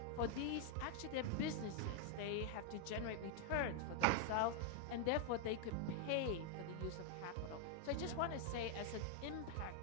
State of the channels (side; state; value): both; different; correlation 0.00